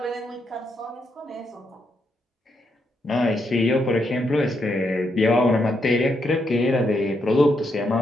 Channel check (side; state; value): both; normal; correlation 0.79